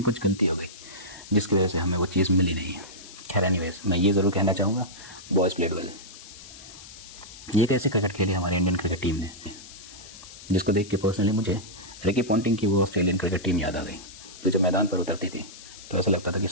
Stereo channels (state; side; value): noise; left; hiss, 17 dB below the sound